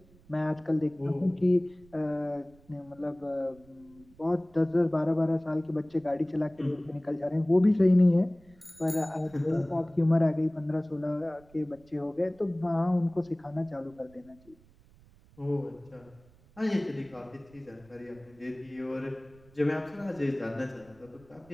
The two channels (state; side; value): noise; right; rumble, 27 dB below the sound